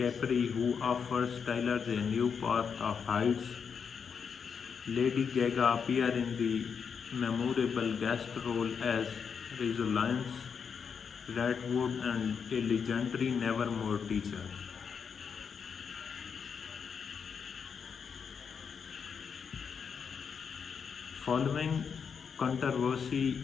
who offers Tyler a new path of heights. Lady Gaga appears in the memorable guest role as Rosalind Redwood and a legendary Nevermore teacher. Following controversy,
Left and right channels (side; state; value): right; quieter; 6.5 dB